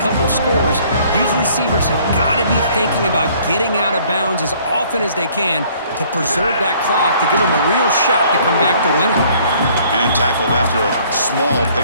of scores, these receivers have got to be thinking about getting out of bounds as often as they can to preserve that clock, to give them a real shot to come back to winning. And tackled after a small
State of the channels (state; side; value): inverted; both; correlation -0.59